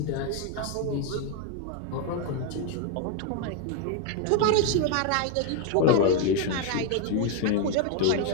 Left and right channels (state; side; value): different; both; correlation 0.01